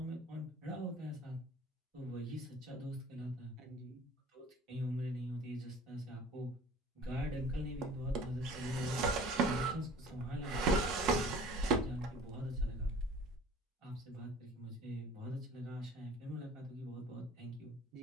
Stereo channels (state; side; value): normal; both; correlation 0.46